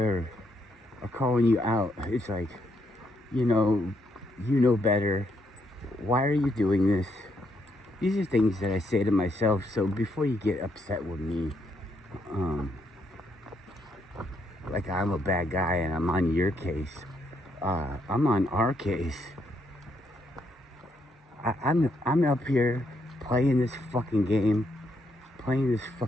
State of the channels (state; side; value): normal; both; correlation 0.75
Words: calling you out. It's like, you know better. Why are you doing this? These are things that I say to myself. So before you get upset with me, like I'm a bad guy and I'm on your case, I'm on our case. I'm up here playing this fucking game, playing this